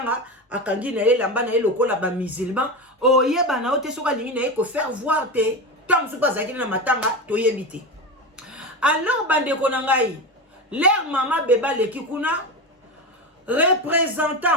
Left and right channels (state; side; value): normal; both; correlation 0.20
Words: akangi na ye lamba na ye lokola ba musulman oyeba na ote soka lingi na ye ko faire voir te tant so pas ça qui na matanga toyebite. Alors bande ko na ngai leur mama beba leki kuna